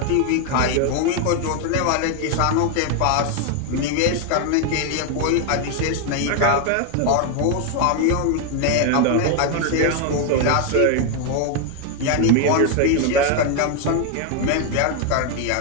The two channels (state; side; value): different; both; correlation 0.01